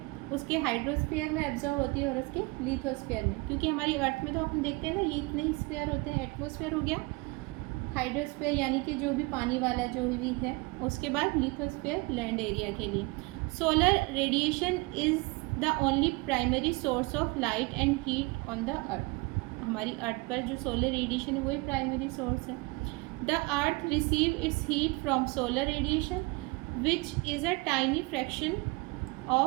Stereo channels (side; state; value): left; quieter; 25.8 dB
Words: उसके हाइड्रोस्फीयर में एब्जॉर्ब होती है और उसके लिथोस्फीयर में। क्योंकि हमारी अर्थ में तो अपन देखते हैं ना, ये इतने ही स्फीयर होते हैं। एटमॉस्फेयर हो गया, हाइड्रोस्फीयर यानी कि जो भी पानी वाला जो भी है, उसके बाद लिथोस्फीयर लैंड एरिया के लिए। Solar radiation is the only primary source of light and heat on the earth. हमारी अर्थ पर जो सोलर रेडिएशन है वही प्राइमरी सोर्स है। The earth receive its heat from solar radiation which is a tiny fraction